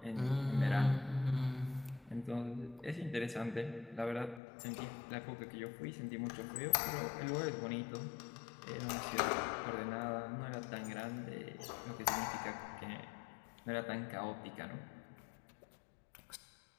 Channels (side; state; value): right; drops out; at 4.4 s